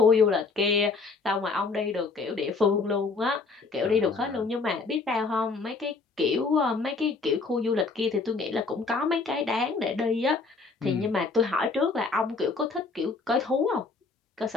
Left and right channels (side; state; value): right; quieter; 4.2 dB